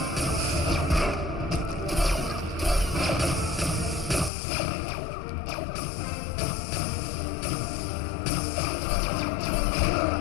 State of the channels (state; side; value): drops out; right; at 4.3 s